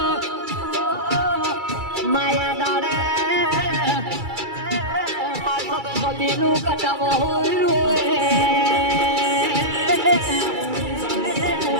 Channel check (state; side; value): late; left; 2.3 ms